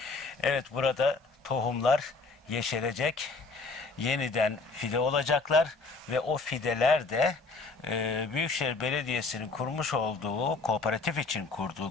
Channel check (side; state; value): right; quieter; 3.9 dB